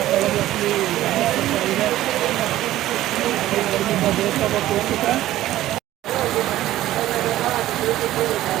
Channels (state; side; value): quieter; left; 14.5 dB